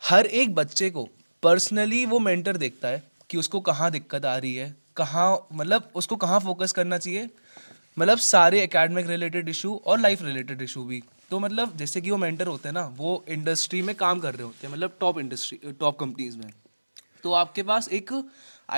हर एक बच्चे को पर्सनली वो मेंटर देखता है कि उसको कहाँ दिक्कत आ रही है, कहाँ मतलब उसको कहाँ फोकस करना चाहिए। मतलब सारे एकेडमिक रिलेटेड इशू और लाइफ रिलेटेड इशू भी। तो मतलब जैसे कि वो मेंटर होते हैं ना, वो इंडस्ट्री में काम कर रहे होते हैं, मतलब टॉप कंपनीज में। तो आपके पास एक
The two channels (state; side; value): inverted; both; correlation -1.00